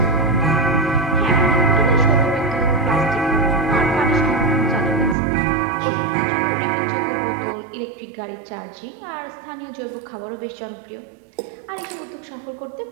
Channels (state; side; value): drops out; left; at 5.2 s